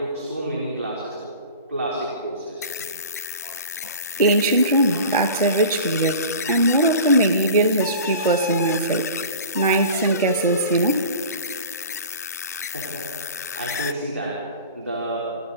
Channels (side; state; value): both; inverted; correlation -0.39